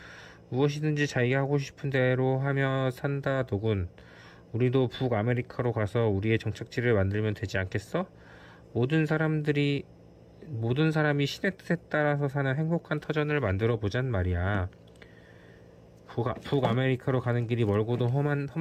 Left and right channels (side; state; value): both; identical; correlation 1.00